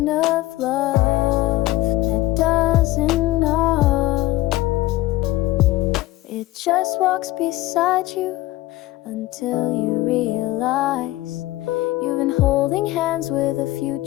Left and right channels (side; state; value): right; quieter; 17.2 dB